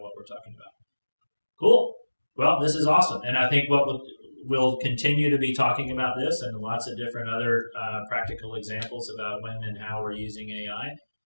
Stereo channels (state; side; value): inverted; both; correlation -1.00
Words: what we're talking about. Cool. Well, this is awesome. And I think we'll continue to be talking about this and lots of different other practical examples about when and how we're using AI